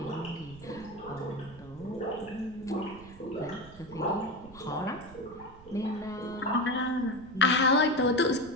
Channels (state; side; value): noise; right; rumble, 19 dB below the sound